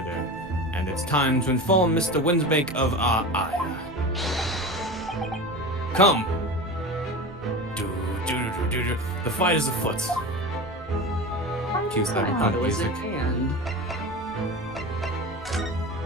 and it's time to inform Mr. Windsbake of our ire. Come! The fight is afoot. Cue I cyberpunk thought it was music. at hand.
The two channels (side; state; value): right; noise; rumble, 22 dB below the sound